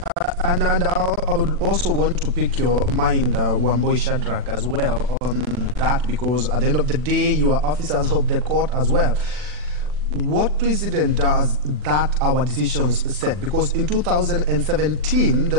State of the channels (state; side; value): late; left; 40 ms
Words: and I would also want to pick your mind, Wamboi Shadrach, as well on that, because at the end of the day, you are officers of the court as well. What precedent does that our decisions set? Because in 2017,